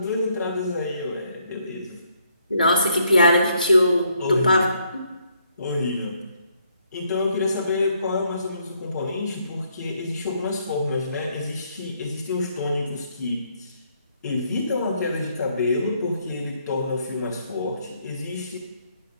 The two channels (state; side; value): inverted; both; correlation -0.71